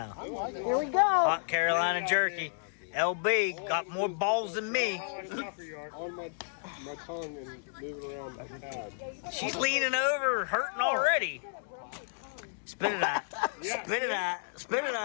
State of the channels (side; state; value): right; silent; digital silence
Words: Here we go. Hot Carolina jerky. LB got more balls than me. On my tongue and moving around the pad. She's leaning over, hurting already. Spit it out. Spit it out. Spit it